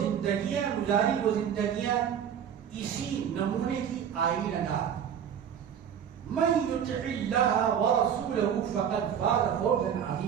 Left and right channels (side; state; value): left; quieter; 8.6 dB